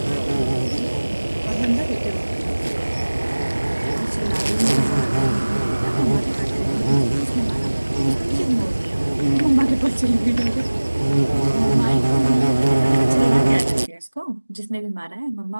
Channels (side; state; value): both; inverted; correlation -1.00